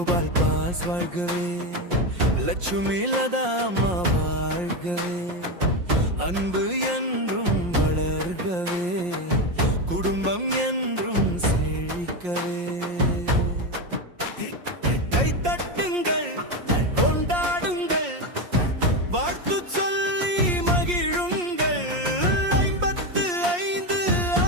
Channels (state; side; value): late; left; 5.6 ms